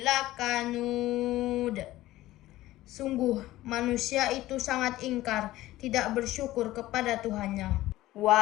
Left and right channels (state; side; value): quieter; right; 16.2 dB